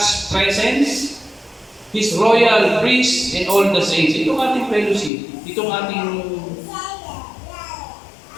presence, His royal priest, and all the saints. Itong ating fellowship, itong ating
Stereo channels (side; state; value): right; drops out; at 5.1 s